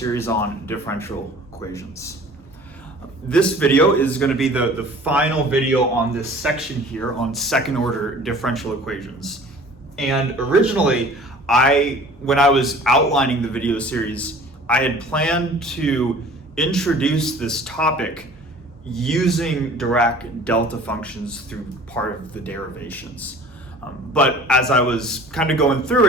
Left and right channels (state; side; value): normal; both; correlation 0.47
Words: on differential equations. This video is going to be the final video on this section here on second order differential equations. And originally, when I was outlining the video series, I had planned to introduce this topic using Dirac delta functions through part of the derivations. But as I was kind of going through